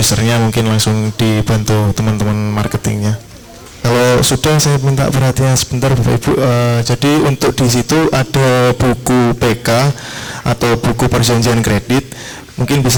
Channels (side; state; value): both; identical; correlation 1.00